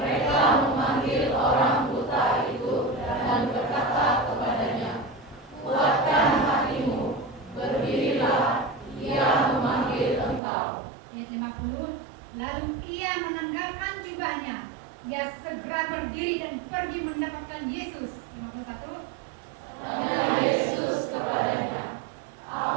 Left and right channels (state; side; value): drops out; left; at 10.4 s